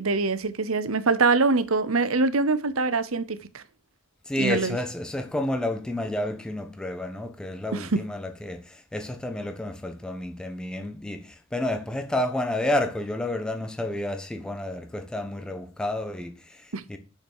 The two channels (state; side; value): normal; both; correlation 0.23